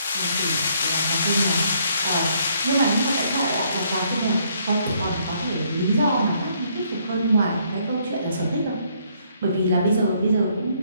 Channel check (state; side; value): inverted; both; correlation -0.68